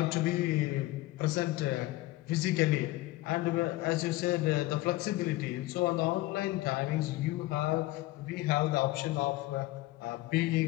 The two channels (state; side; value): quieter; right; 18.0 dB